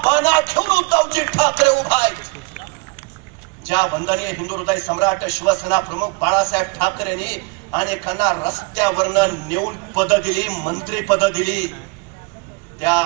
बाणा घेऊन उद्धवजी ठाकरे उभा आहेत. ज्या वंदनीय हिंदू हृदय सम्राट शिवसेना प्रमुख बाळासाहेब ठाकरेंनी अनेकांना रस्त्यावरनं नेऊन पद दिली, मंत्री पद दिली, त्या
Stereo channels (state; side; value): quieter; left; 29.8 dB